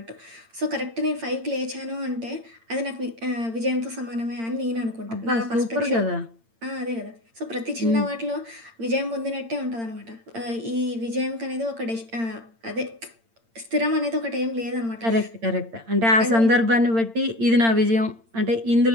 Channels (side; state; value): left; late; 8.8 ms